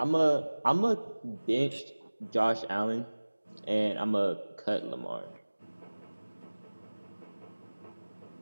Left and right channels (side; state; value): both; inverted; correlation -1.00